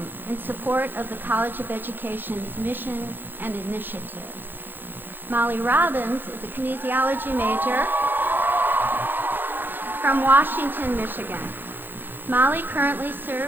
in support of the College of Education's mission and initiatives. Molly Robbins is a kinesiology major from Washington, Michigan. Molly currently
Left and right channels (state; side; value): late; left; 0.095 ms